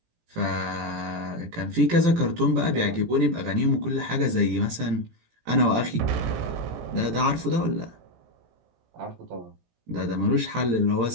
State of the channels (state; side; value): late; left; 18 ms